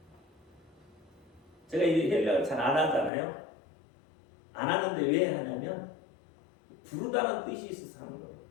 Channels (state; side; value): drops out; right; at 3.1 s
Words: 제가 이 헬라어를 잘 안 하잖아요. 안 하는데 왜 하냐면 부르다는 뜻이 있어서 하는 거예요.